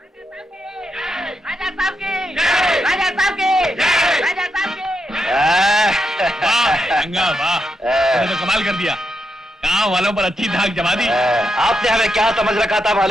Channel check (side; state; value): both; normal; correlation 0.83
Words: राजा साहब की, राजा साहब की, राजा साहब की। वाह वाह, तूने तो कमाल कर दिया। गाँव वालों पर अच्छी धाक जमा दी। आपने हमें क्या समझ रखा था